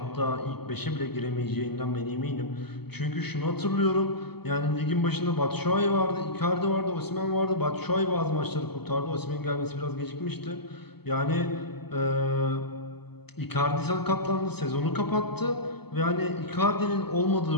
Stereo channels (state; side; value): late; right; 0.97 ms